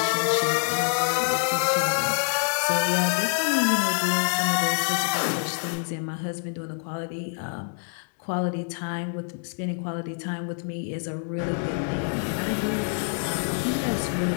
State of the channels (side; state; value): right; silent; 61 dB below the other